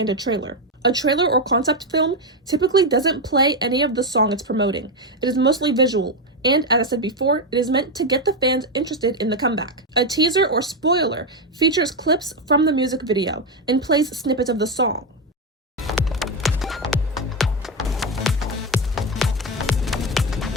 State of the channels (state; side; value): normal; both; correlation 0.09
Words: a trailer. A trailer or concept film typically doesn't play any of the song it's promoting. It is mostly visual, and as I said before, it is meant to get the fans interested in the comeback. A teaser or spoiler features clips from the music video and plays snippets of the song.